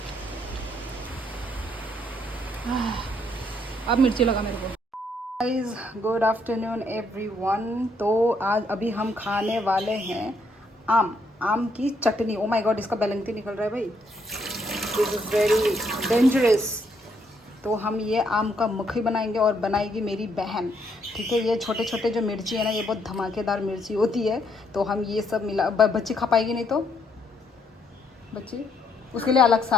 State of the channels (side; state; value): both; normal; correlation 0.72